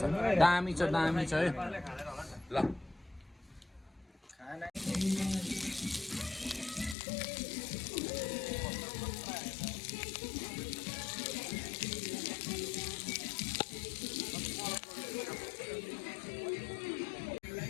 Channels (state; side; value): drops out; right; at 7.0 s